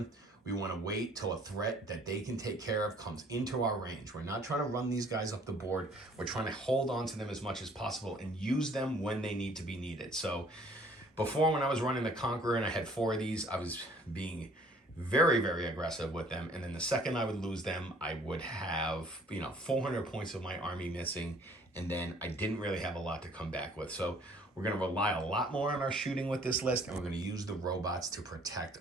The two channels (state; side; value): normal; both; correlation 0.57